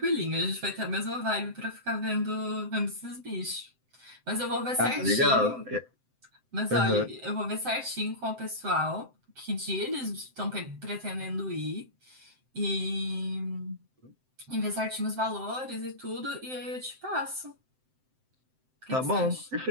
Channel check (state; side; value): late; left; 7.8 ms